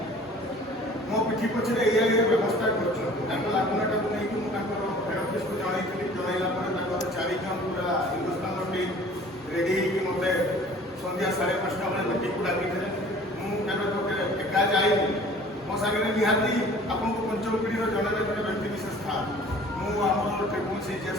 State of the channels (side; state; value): both; normal; correlation 0.49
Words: ମୋ ପିଠି ପଛରେ ଏଇଆ ବ୍ୟବସ୍ଥା କରୁଛନ୍ତି। ତାଙ୍କ ଲାଗୁନାଟାକୁ ନେଇକି ମୁଁ ତାଙ୍କର ହେଡ୍ ଅଫିସକୁ ଜଣାଇଥିଲି। ଜଣାଇଲା ପରେ ତାଙ୍କର 4 ଜଣ ପୁରା ହିନ୍ଦୁସ୍ତାନର ଟିମ୍ ରେଡ଼ି ହେଇକି ମୋତେ ସନ୍ଧ୍ୟା 5:30 ବେଳେ ମିଟିଂକୁ ଡାକିଥିଲେ। ମୁଁ କେବେ ଏକା ଯାଇନି। ମୋ ସାଙ୍ଗରେ ନିହାତି ଆପଣଙ୍କୁ ପଞ୍ଚମ ପିଢ଼ିର ଜଣେ ବ୍ୟକ୍ତି ବିଶେଷ ଥାଏ। ମୁଁ ଆମର ଟ୍ରିବୁଲ୍ ସି ଯେ